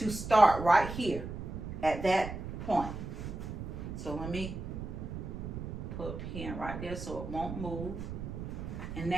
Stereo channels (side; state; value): right; noise; rumble, 7 dB below the sound